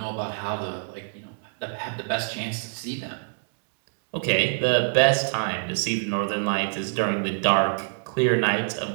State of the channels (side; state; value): left; silent; digital silence